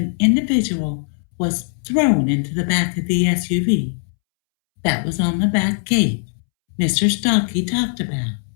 individual was thrown into the back of the SUV. That was on the back gate Mr. Stocky talked about.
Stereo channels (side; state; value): right; silent; 66 dB below the other